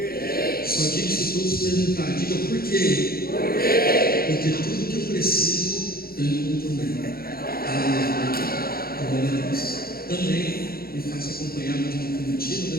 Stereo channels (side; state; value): right; late; 0.44 ms